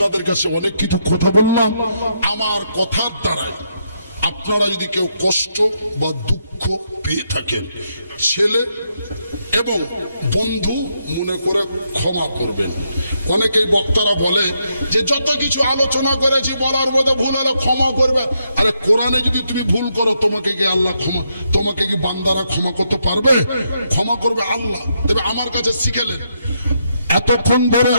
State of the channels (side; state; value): both; inverted; correlation -0.79